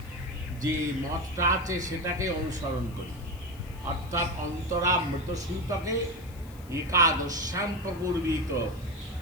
যে মতটা আছে সেটাকে অনুসরণ করি, অর্থাৎ অন্তরা মৃতসূতকে একাদশ্যাম প্রপূর্বিত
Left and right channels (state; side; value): noise; left; hiss, 23 dB below the sound